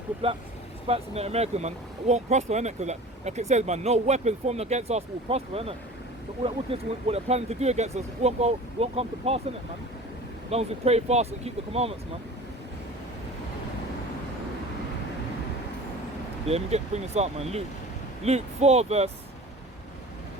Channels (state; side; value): normal; both; correlation 0.40